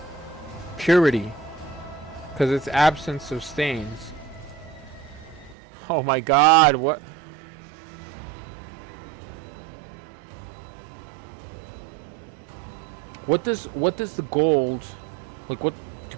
Purity. Because it's absence of stains. Oh my god, what? What does the gold, like, what do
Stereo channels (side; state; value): left; drops out; at 5.6 s